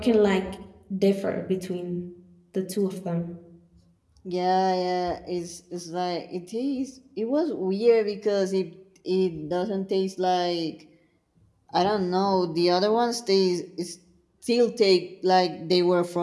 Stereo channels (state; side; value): identical; both; correlation 1.00